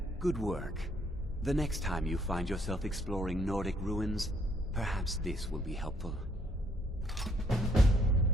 good work. The next time you find yourself exploring Nordic ruins, perhaps this will be helpful.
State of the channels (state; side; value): normal; both; correlation 0.68